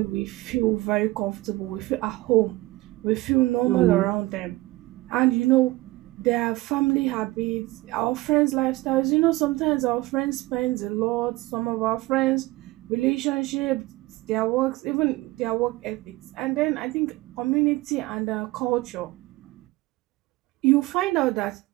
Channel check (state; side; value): quieter; left; 19.7 dB